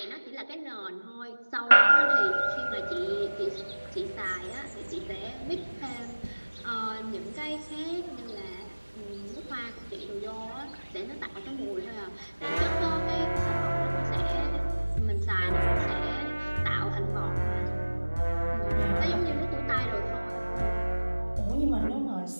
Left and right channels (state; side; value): inverted; both; correlation -1.00